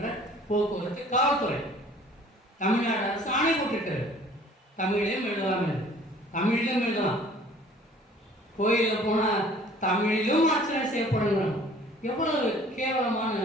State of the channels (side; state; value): both; normal; correlation 0.52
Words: போக்குவரத்து காவல்துறை, தமிழ்நாடு அரசு ஆணை போட்டிருக்கிறது. தமிழிலும் எழுதலாம் என்று, தமிழிலும் எழுதலாம். கோயிலில் போனால் தமிழிலும் அர்ச்சனை செய்யப்படணும். எவ்வளவு கேவலமான